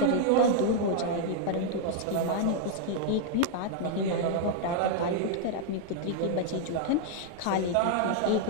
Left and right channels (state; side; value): different; both; correlation -0.01